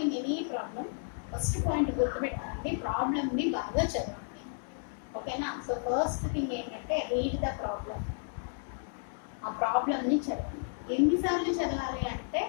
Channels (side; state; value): right; silent; digital silence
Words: any problem first point గుర్తుపెట్టుకోండి, ప్రాబ్లమ్ని బాగా చదవండి. ఓకేనా? సో ఫస్ట్ థింగ్ ఏంటంటే రీడ్ ద ప్రాబ్లం. ఆ ప్రాబ్లమ్ని చదవండి. ఎన్నిసార్లు చదవాలి అంటే